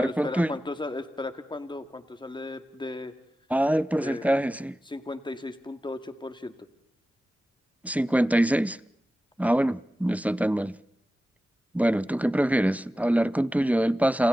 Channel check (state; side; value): normal; both; correlation 0.94